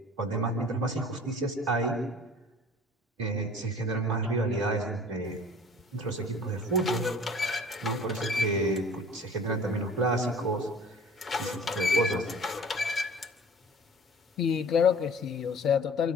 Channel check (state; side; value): normal; both; correlation 0.46